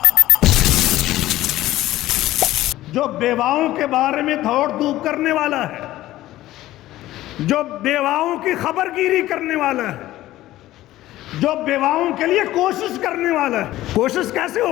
جو بیواؤں کے بارے میں دوڑ دھوپ کرنے والا ہے، جو بیواؤں کی خبر گیری کرنے والا ہے، جو بیواؤں کے لیے کوشش کرنے والا ہے۔ کوشش کیسے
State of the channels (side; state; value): right; quieter; 15.4 dB